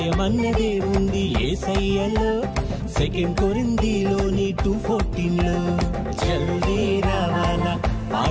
ఉంది యేసయ్యలో, సెకండ్ కొరింథీలోని 2:14లో. జల్దీ రావాలా,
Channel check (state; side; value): identical; both; correlation 1.00